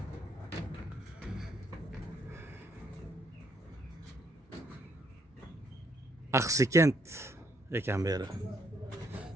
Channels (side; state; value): both; normal; correlation 0.71